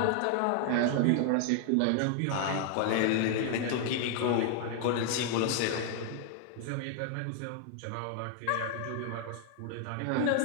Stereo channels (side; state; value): both; different; correlation 0.00